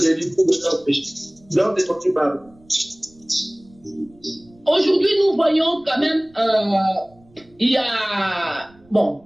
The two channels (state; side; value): noise; right; rumble, 29 dB below the sound